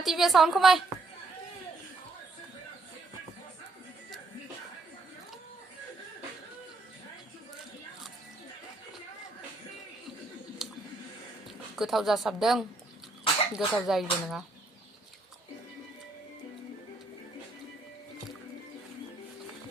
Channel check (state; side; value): quieter; left; 3.3 dB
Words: साउन्ड खमाय गोथाव जासाबदों गोथाव जायोबो नङा